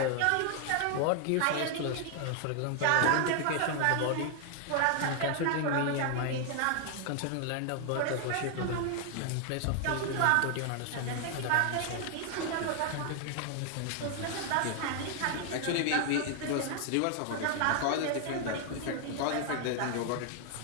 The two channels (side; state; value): both; different; correlation 0.00